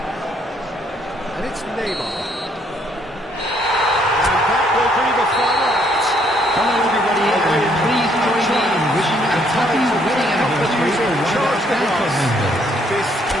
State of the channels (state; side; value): normal; both; correlation 0.68